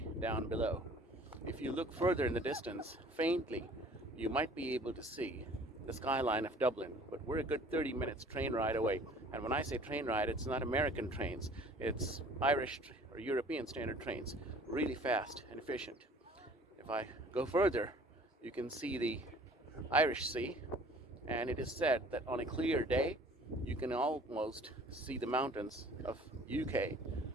down below. If you look further in the distance, faintly, you might be able to see the skyline of Dublin, but we're a good 30 minutes train ride away. And when I say train ride, it's not American trains, it's Irish or European standard trains, really fast and efficient. If I go further, you can see the Irish Sea, and it is said that on a clear day, you can almost see the mountains of UK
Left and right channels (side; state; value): both; normal; correlation 0.51